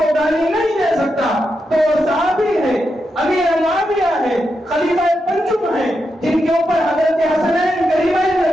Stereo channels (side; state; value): both; normal; correlation 0.86